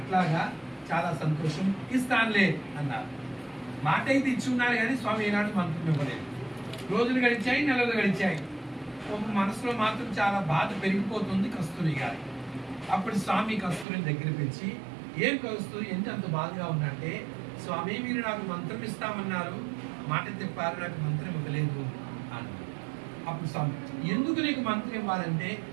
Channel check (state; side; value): drops out; left; at 13.9 s